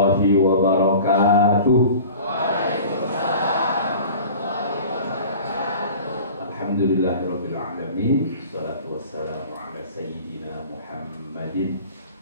wabarakatuh. Alhamdulillahirabbil alamin. Wassalatu wassalamu ala sayyidina Muhammadin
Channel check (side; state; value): both; inverted; correlation -0.42